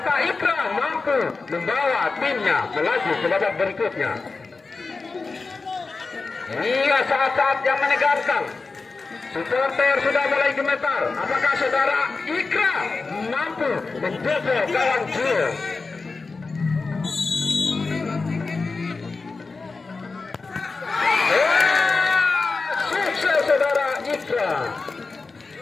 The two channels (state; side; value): quieter; right; 4.0 dB